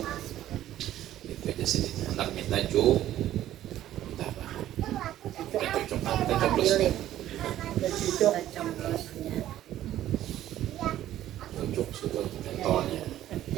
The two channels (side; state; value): left; quieter; 12.9 dB